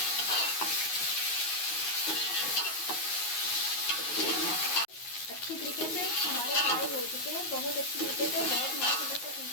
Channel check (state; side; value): late; right; 10 ms